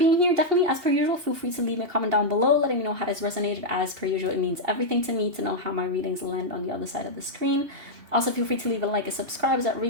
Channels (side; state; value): left; late; 2.8 ms